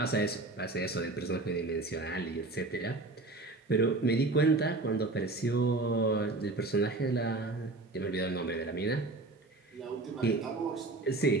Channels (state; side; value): quieter; left; 3.2 dB